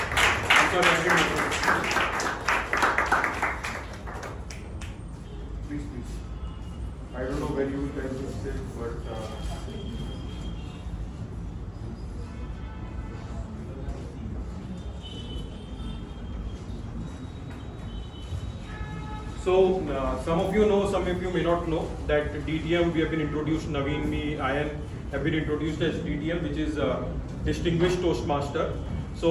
I'm sorry. I didn't. Please. I don't know when you will tell this thing, but. So some of you know, some of you may not know that DTM we have been introduced. Naveen, me, Ayan have been introduced as DTM, which is Distinguished Toastmaster.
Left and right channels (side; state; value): both; identical; correlation 1.00